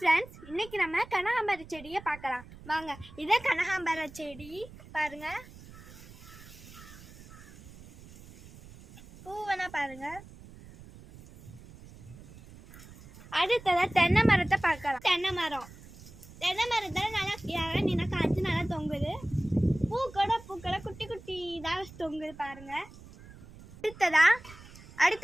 இன்னைக்கு நம்ம கனகாம்பர செடியை பார்க்கலாம் வாங்க. இதே கனகாம்பர செடி பாருங்க, பூவனா பாருங்க. அடுத்ததா தென்னை மரத்தை பார்க்கலாம். தென்னை மரத்தில் நல்லா இறங்கினா காய்ச்சி நல்லா தொங்குது. பூக்களை குட்டி குட்டி இதாக தொங்குது பாருங்க. அடுத்ததா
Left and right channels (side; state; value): right; noise; rumble, 19 dB below the sound